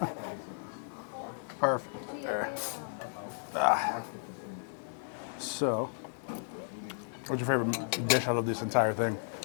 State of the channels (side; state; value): right; silent; digital silence